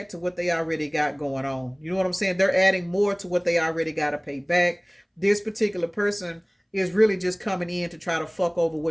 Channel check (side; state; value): both; identical; correlation 1.00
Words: to what they already got going on. You know what I'm saying? They're adding more to what they already got to pay back. This particular person is really just coming in to try to fuck over